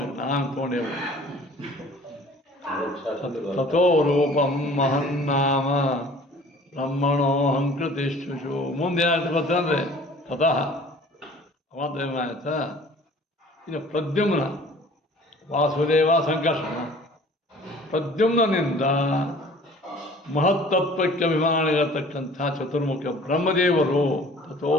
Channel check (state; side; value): normal; both; correlation 0.49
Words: ನಾನು ತೊಗೊಂಡೇವು. ತಥೋ ರೂಪಂ ಮಹನ್ನಾಮ ಬ್ರಹ್ಮಣೋ ಹಂಕೃತಿಷ್ಠುಷು. ಮುಂದೆ ಏನಾಯ್ತು ಗೊತ್ತಂದ್ರೆ ತತಃ ಅವಂತ ಆಯ್ತಾ. ಇನ್ನು ಪ್ರದ್ಯುಮ್ನ ವಾಸುದೇವ ಸಂಕರ್ಷಣ, ಪ್ರದ್ಯುಮ್ನಿಂದ ಮಹತ್ತತ್ವಕ್ಕೆ ಅಭಿಮಾನಿರತಕ್ಕಂಥ ಚತುರ್ಮುಖ ಬ್ರಹ್ಮದೇವರು. ತಥೋ